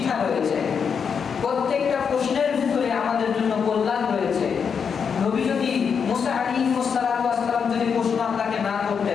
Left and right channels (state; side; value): quieter; right; 6.5 dB